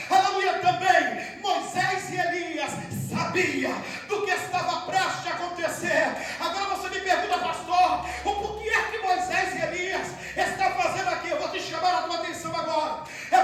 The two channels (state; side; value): identical; both; correlation 1.00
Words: aleluia, também Moisés e Elias sabia do que estava prestes a acontecer. Agora você me pergunta, pastor, o porquê é que Moisés e Elias estão fazendo aqui? Eu vou te chamar a tua atenção agora. É